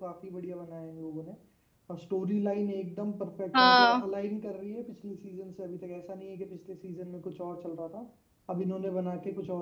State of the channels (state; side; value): identical; both; correlation 1.00